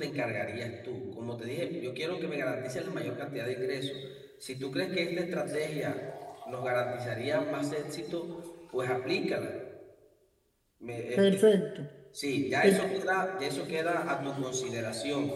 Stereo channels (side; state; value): both; identical; correlation 1.00